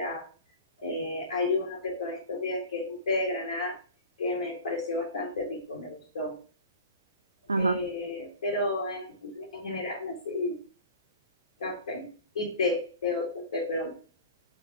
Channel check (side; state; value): both; inverted; correlation -0.38